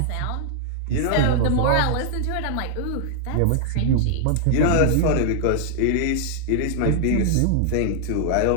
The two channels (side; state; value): both; different; correlation -0.01